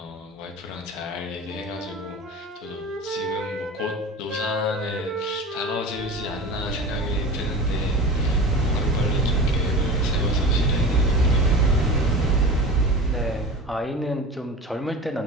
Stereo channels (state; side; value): normal; both; correlation 0.33